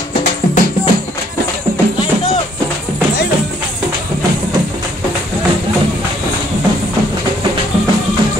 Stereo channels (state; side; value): normal; both; correlation 0.65